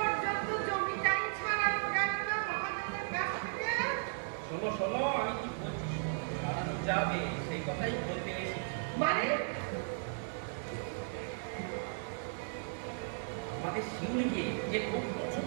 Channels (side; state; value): left; silent; digital silence